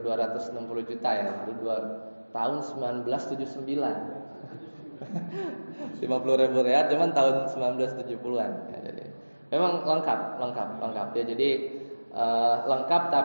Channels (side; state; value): both; inverted; correlation -1.00